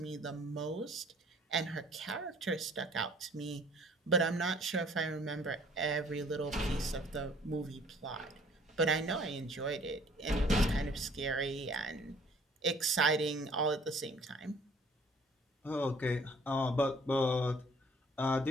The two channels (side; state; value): both; normal; correlation 0.56